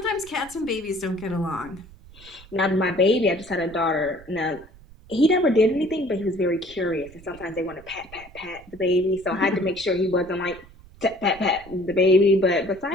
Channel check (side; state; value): right; noise; rumble, 22 dB below the sound